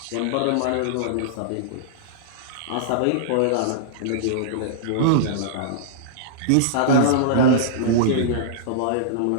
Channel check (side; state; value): both; different; correlation -0.02